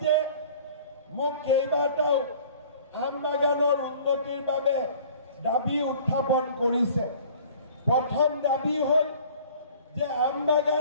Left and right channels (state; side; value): inverted; both; correlation -0.49